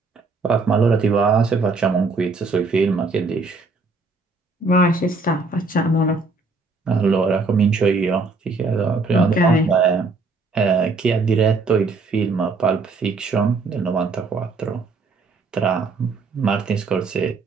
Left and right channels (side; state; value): left; quieter; 3.9 dB